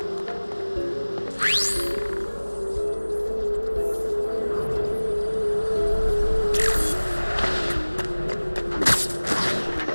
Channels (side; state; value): both; inverted; correlation -1.00